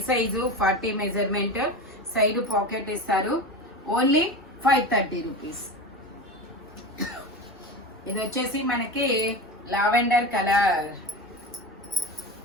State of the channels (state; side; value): normal; both; correlation 0.26